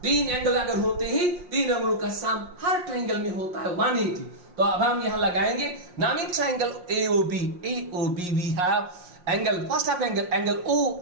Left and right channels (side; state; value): left; late; 5.6 ms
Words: तीन एंगल अगर होते ही तीन एंगलों का सम हर ट्राइंगल में होता है 180। तो अब हम यहां लगाएंगे नामी triangle AOB we have angle, first of angle